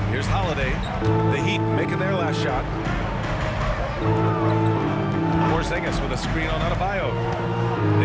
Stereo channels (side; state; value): both; identical; correlation 1.00